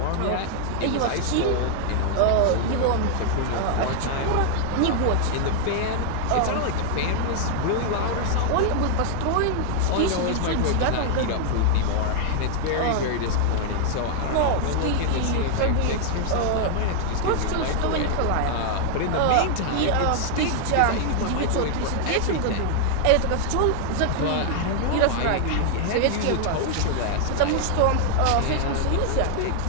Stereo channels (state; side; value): different; both; correlation 0.00